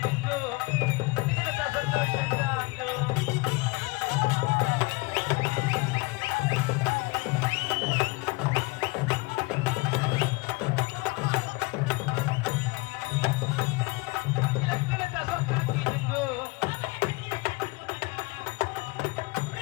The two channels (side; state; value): right; quieter; 25.1 dB